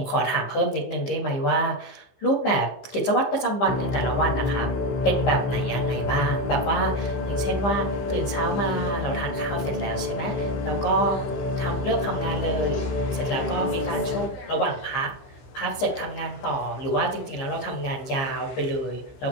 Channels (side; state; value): right; late; 15 ms